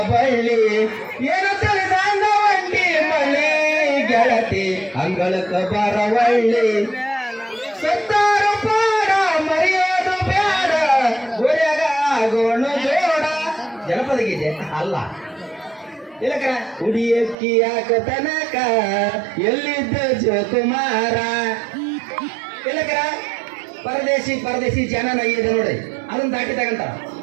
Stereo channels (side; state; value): left; drops out; at 17.4 s